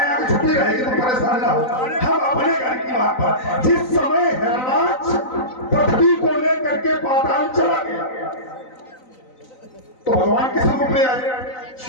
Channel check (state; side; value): late; right; 3.9 ms